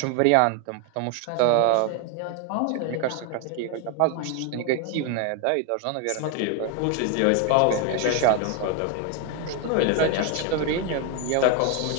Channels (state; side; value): different; both; correlation 0.01